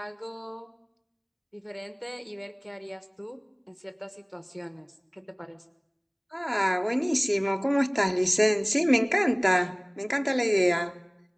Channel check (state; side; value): identical; both; correlation 1.00